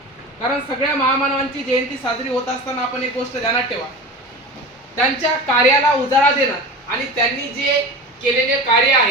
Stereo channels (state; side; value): normal; both; correlation 0.31